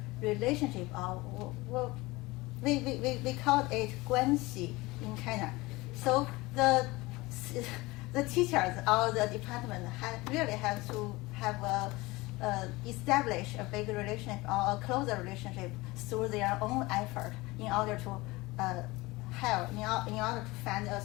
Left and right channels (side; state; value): right; quieter; 21.7 dB